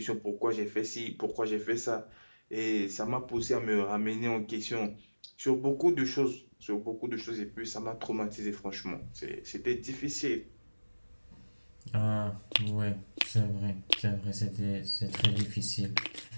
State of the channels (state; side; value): inverted; both; correlation -1.00